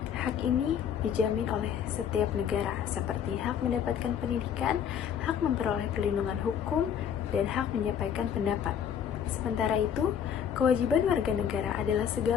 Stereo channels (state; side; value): quieter; right; 8.4 dB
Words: Hak ini dijamin oleh setiap negara, seperti hak mendapatkan pendidikan, hak memperoleh perlindungan hukum, dan hak menyampaikan pendapat. Sementara itu, kewajiban warga negara adalah